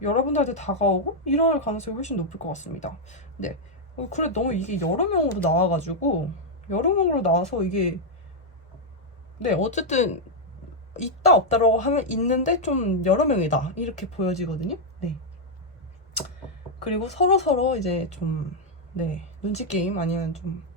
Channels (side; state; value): both; normal; correlation -0.02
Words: 여러분들한테 다가오고 이럴 가능성이 훨씬 높을 것 같습니다. 네. 그래 너무 이게 여러 명으로 나와가지고 여러 명으로 나와서 이게 네 어쨌든 있다 없다라고 하면 있는데 좀 여러 명이다 이렇게 보여지거든요. 네. 그리고 서로 이제 좀 네 눈치 게임 아니면 좀